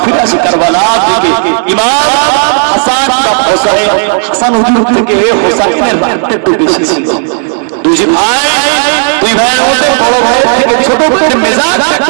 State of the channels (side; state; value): left; silent; 66 dB below the other